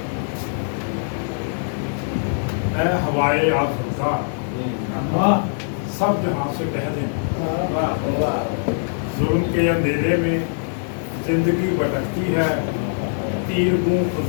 اے ہوائے آسودہ سب جہاں سے کہہ دیں، ظلم کے اندھیرے میں زندگی بھٹکتی ہے، تیر گوں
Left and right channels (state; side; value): silent; right; digital silence